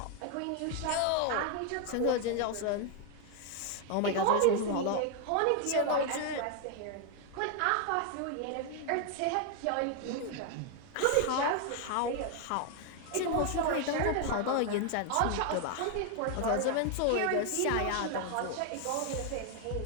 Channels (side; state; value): both; different; correlation 0.01